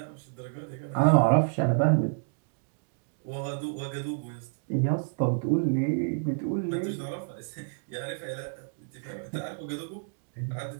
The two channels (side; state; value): left; silent; digital silence